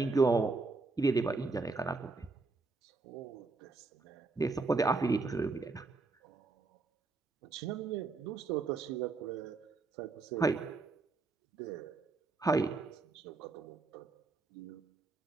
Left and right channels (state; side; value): quieter; left; 3.8 dB